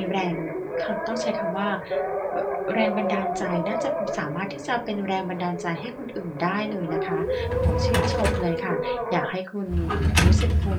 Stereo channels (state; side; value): identical; both; correlation 1.00